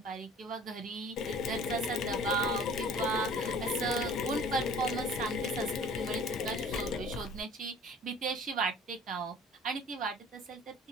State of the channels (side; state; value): both; normal; correlation 0.48